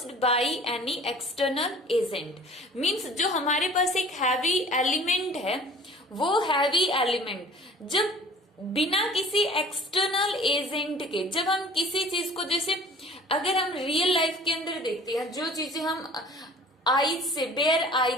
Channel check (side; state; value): both; normal; correlation 0.47